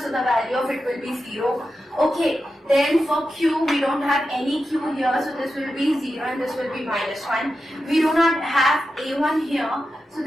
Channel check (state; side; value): normal; both; correlation 0.90